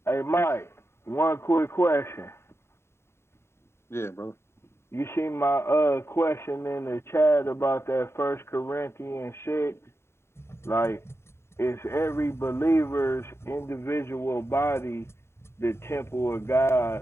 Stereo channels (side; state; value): right; late; 0.12 ms